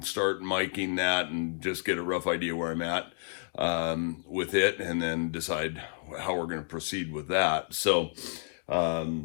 start miking that and just get a rough idea where I'm at with it, and then decide how we're going to proceed with that. So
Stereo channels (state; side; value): silent; right; digital silence